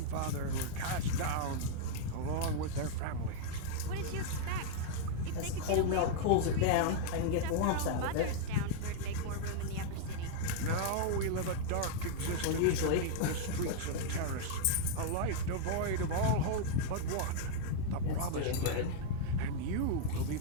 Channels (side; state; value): both; different; correlation -0.01